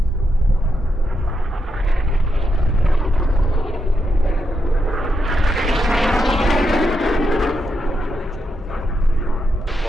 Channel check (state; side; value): normal; both; correlation 0.83